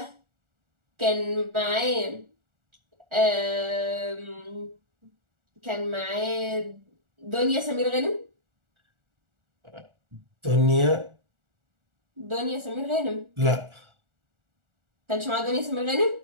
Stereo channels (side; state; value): left; late; 1.4 ms